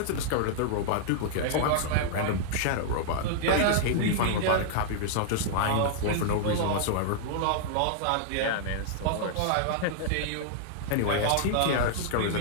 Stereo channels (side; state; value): both; different; correlation -0.01